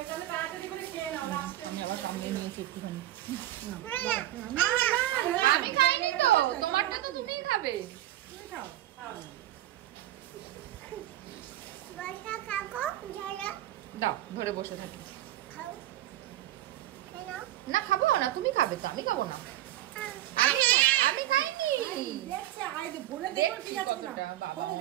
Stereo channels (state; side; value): quieter; left; 14.1 dB